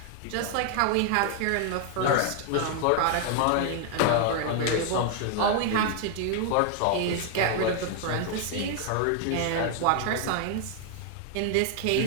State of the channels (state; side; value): different; both; correlation 0.00